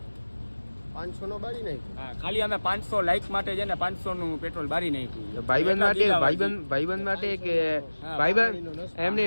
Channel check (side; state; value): both; inverted; correlation -1.00